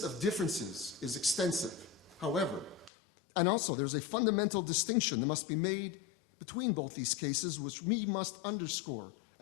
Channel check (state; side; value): drops out; right; at 2.9 s